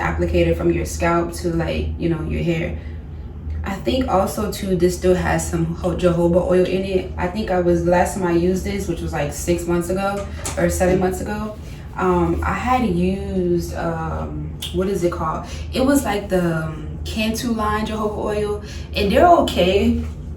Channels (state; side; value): identical; both; correlation 1.00